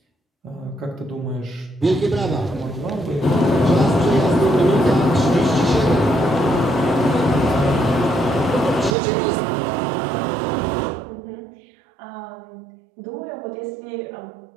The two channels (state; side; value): drops out; left; at 9.0 s